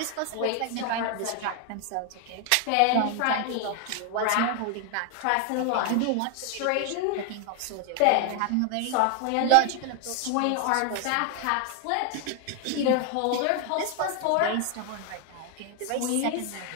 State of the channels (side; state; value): both; different; correlation 0.00